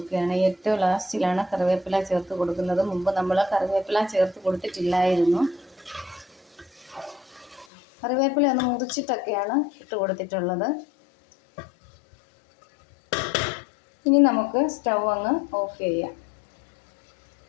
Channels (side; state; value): right; drops out; at 7.7 s